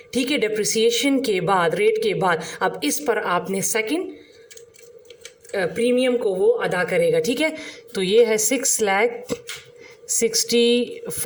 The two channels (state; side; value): identical; both; correlation 1.00